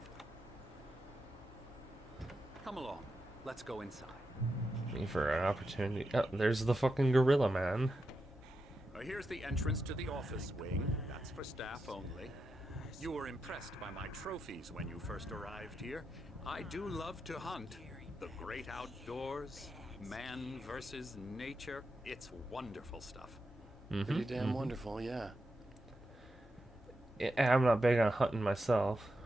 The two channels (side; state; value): both; normal; correlation 0.87